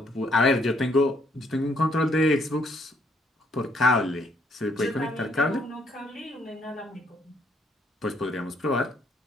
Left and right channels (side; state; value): both; normal; correlation 0.69